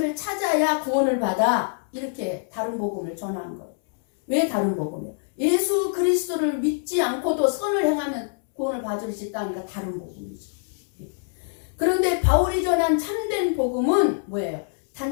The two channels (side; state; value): right; silent; 62 dB below the other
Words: 찾아야 구원을 받아. 이렇게 다른 복음을 전하는 거예요. 왜 다른 복음이에요? 예수 그리스도를 믿지 않고도 선을 행하면 구원을 받을 수 있다니까 다른 복음이죠. 그런데 바울이 전한 참된 복음은 뭐예요?